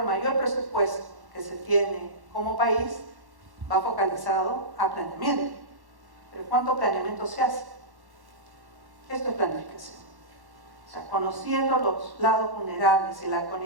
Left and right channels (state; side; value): late; left; 1.1 ms